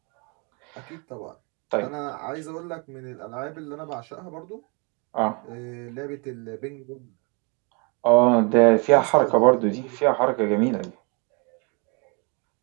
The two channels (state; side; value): quieter; left; 33.5 dB